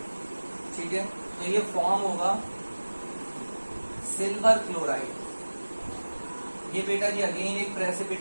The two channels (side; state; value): both; inverted; correlation -1.00